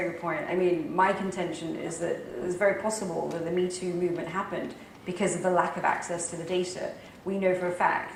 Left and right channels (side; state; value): both; identical; correlation 1.00